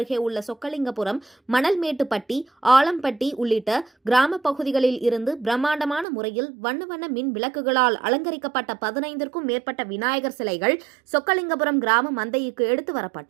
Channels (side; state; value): left; drops out; at 6.1 s